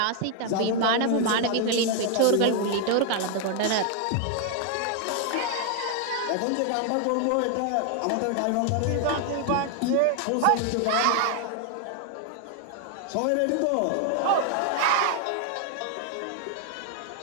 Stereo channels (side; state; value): both; different; correlation 0.00